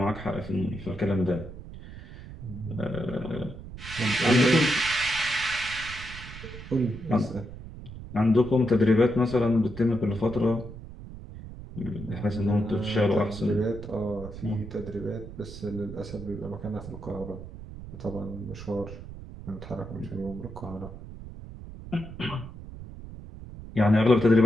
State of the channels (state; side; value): noise; right; rumble, 13 dB below the sound